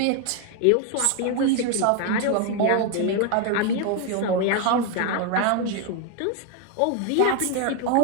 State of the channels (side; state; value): both; different; correlation 0.01